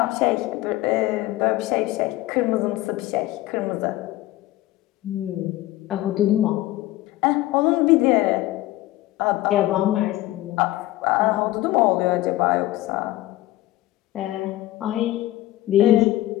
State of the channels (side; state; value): right; quieter; 16.3 dB